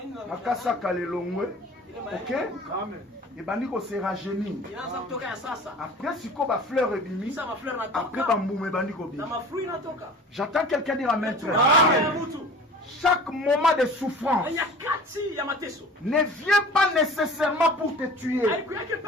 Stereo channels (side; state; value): both; normal; correlation 0.42